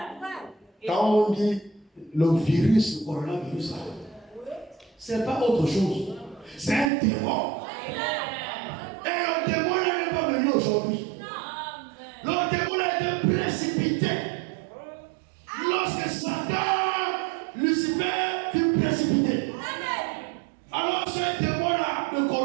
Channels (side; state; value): left; drops out; at 6.9 s